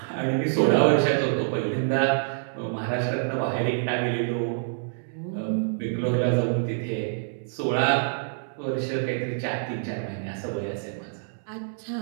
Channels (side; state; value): left; silent; 61 dB below the other